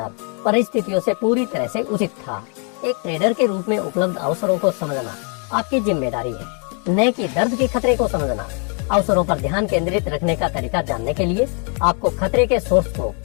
परिस्थितियों से पूरी तरह से उचित था। एक ट्रेडर के रूप में उपलब्ध अवसरों को समझना आपकी जिम्मेदारी है, न कि दर्द के खतरे को समझना। अवसरों पर ध्यान केंद्रित रखने का तरीका जानने के लिए आपको खतरे के सोर्स को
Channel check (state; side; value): quieter; right; 38.9 dB